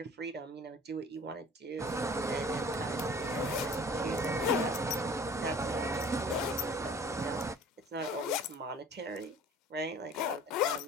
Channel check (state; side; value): normal; both; correlation 0.47